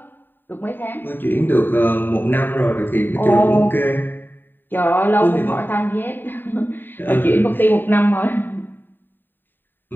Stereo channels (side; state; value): right; late; 0.093 ms